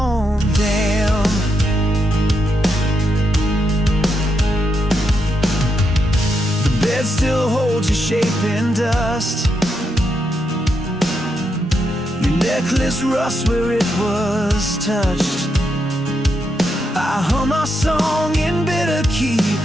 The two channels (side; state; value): both; normal; correlation 0.82